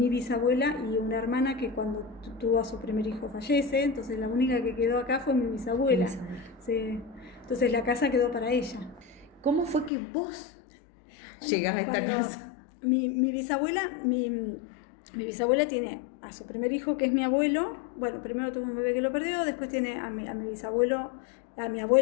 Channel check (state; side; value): drops out; right; at 9.9 s